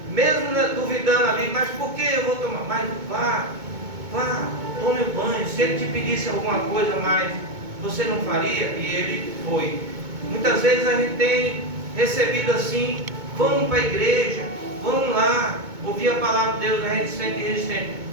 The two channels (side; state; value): left; late; 2.2 ms